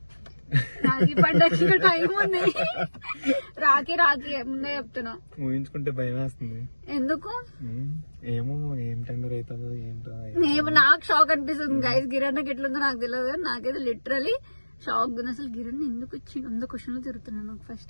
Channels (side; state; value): both; inverted; correlation -1.00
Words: రాఖీ పండగకి ఇంకా టైం ఉంది. రాఖీ ముందే చెప్తున్నా. ఊహించుకుంటే భయం వేస్తుంది. ఎందుకు ఏమో, ఏం టెండర్ అవుతుందో ఏంటో. నాకు షాక్ అనిపిస్తుంది గైస్. గిరణ్కి ఎట్లుందో నాకు తెలియదు కానీ నాకైతే లిటరలీ షాక్ ఉంది. అసలు గిరణ్ ఎందుకు వచ్చి 100 క్వశ్చన్లు తిరుగుతున్నాను నాకు.